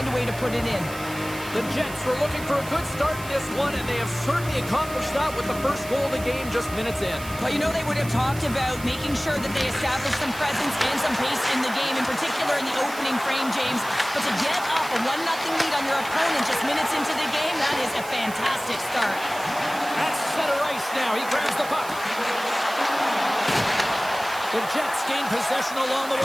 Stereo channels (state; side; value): noise; right; hiss, 15 dB below the sound